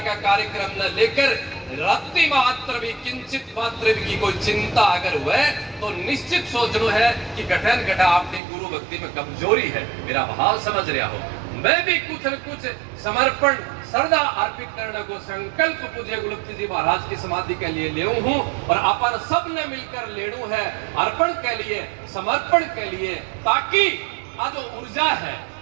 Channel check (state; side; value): drops out; left; at 8.4 s